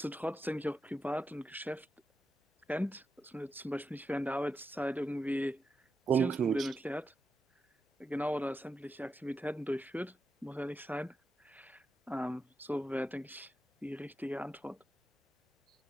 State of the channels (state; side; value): normal; both; correlation 0.87